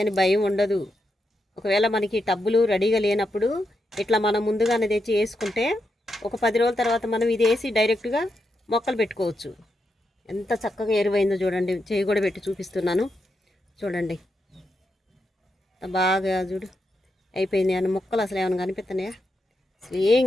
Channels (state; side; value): normal; both; correlation 0.84